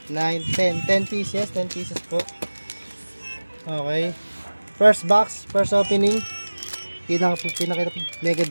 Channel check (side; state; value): both; inverted; correlation -1.00